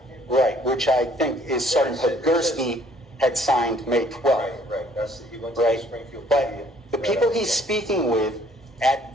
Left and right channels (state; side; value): normal; both; correlation 0.60